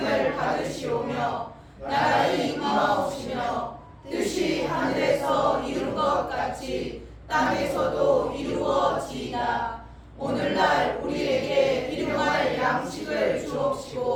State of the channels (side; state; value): both; identical; correlation 1.00